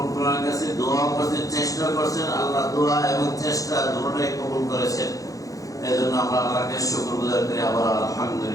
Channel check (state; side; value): late; right; 0.17 ms